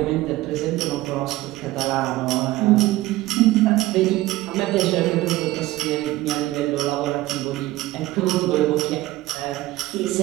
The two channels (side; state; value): left; quieter; 17.3 dB